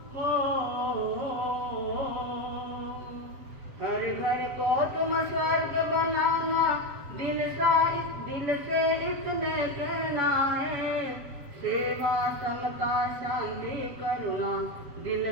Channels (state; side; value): late; left; 7.5 ms